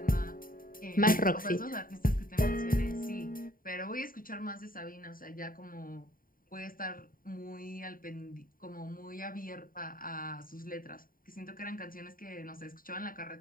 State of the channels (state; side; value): late; right; 0.41 ms